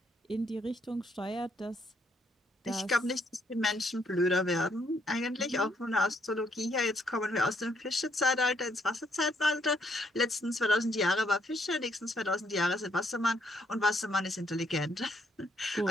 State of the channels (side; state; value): both; normal; correlation 0.71